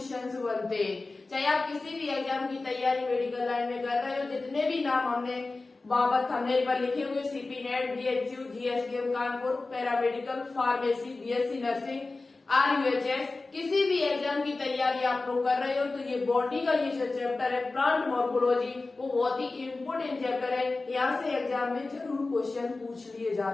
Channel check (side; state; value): right; quieter; 3.5 dB